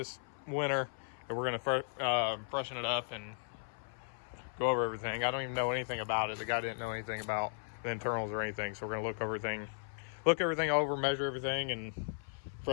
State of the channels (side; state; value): right; silent; 54 dB below the other